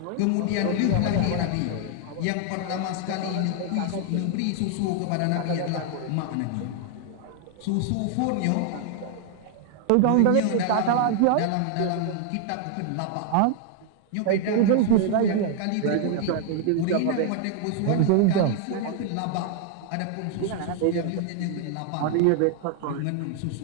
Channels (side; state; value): both; different; correlation 0.00